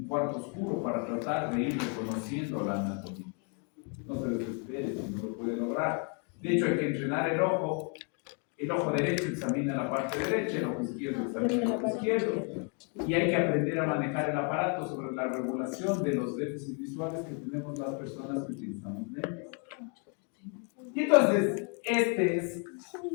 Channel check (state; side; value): quieter; right; 38.8 dB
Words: cuarto oscuro para tratar de ir reconociendo la anatomía. No se desespere si no lo puede lograr. De hecho, hay que entrenar el ojo. El ojo derecho examina la parte derecha, el ojo izquierdo examina el ojo izquierdo. Y hay que aprender a manejar el aparato sobre la regulación de los déficits visuales que tenemos las personas que utilizamos lentes. Y entonces, este es